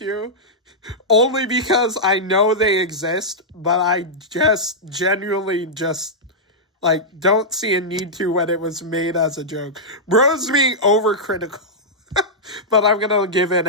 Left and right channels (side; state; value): both; normal; correlation -0.10